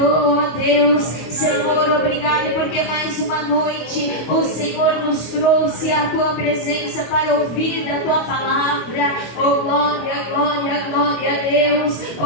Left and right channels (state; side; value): late; right; 25 ms